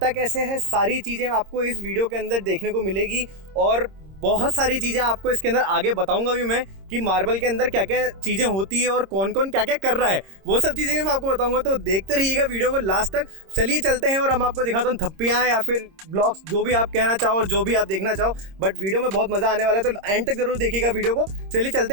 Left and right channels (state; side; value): late; left; 26 ms